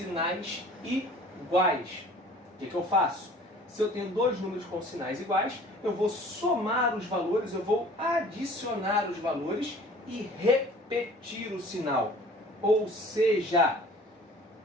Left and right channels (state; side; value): normal; both; correlation 0.48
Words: iguais, o que eu faço? Se eu tenho dois números com sinais iguais, eu vou somar os valores, eu vou adicionar os valores e repetir o sinal. Ou seja,